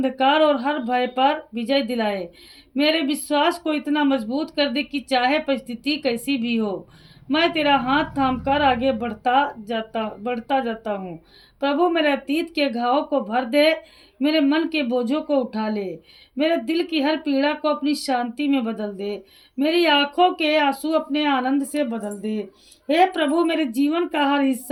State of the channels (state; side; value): identical; both; correlation 1.00